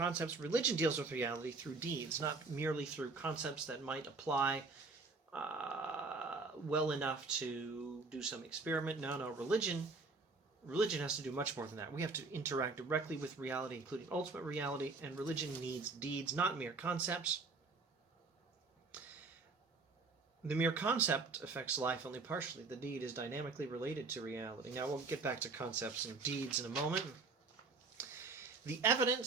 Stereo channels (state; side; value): quieter; left; 4.0 dB